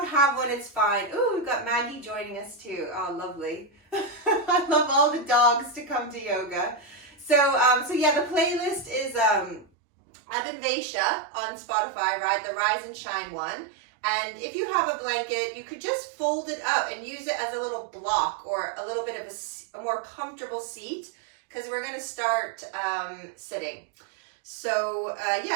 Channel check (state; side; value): drops out; left; at 9.7 s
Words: have one, it's fine. Ooh, we've got Maggie joining us too. Oh, lovely. I love all the dogs to come to yoga. So yeah, the playlist is Abhinivesha on Spotify, right? The Rise and Shine one. And if you have a blanket, you could just fold it up and use it as a little block or a little bit of a more comfortable seat, because we're going to start sitting. So